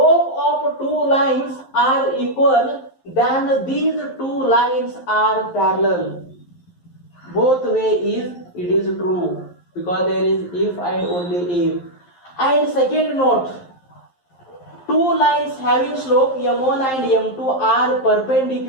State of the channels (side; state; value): right; late; 11 ms